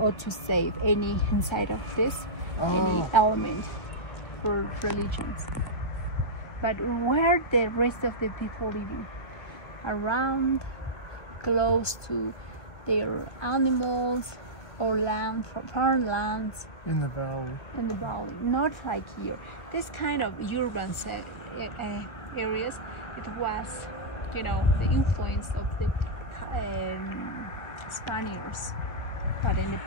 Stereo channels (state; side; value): late; right; 1.6 ms